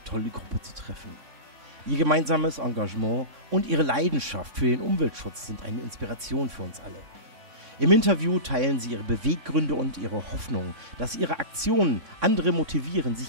tolle Gruppe zu treffen. Ihr gemeinsames Engagement und ihre Leidenschaft für den Umweltschutz sind eine Inspiration für uns alle. Im Interview teilen sie ihre Beweggründe und ihre Hoffnung, dass ihre Aktionen andere motivieren,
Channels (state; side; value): late; left; 3.6 ms